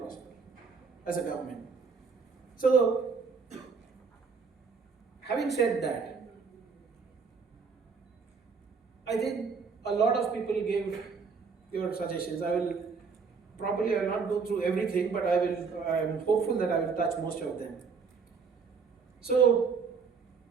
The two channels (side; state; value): left; quieter; 5.2 dB